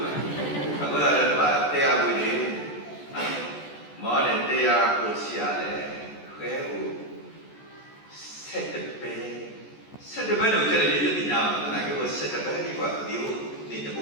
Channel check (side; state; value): right; late; 14 ms